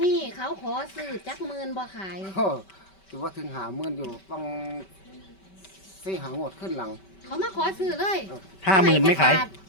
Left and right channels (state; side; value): late; right; 5.2 ms